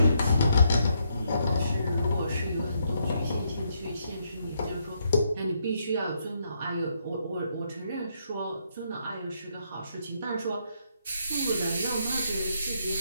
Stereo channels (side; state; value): both; inverted; correlation -0.76